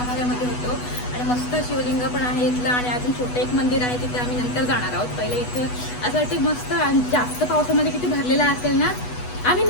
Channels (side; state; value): right; late; 8.2 ms